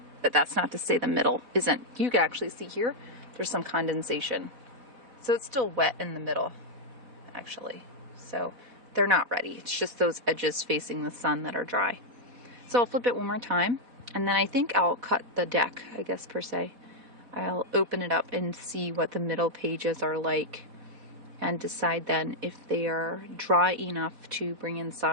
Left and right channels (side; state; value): left; late; 4.1 ms